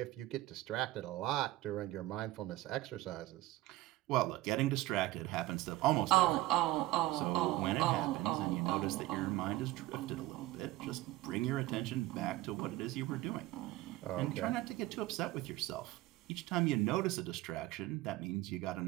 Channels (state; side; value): quieter; left; 17.5 dB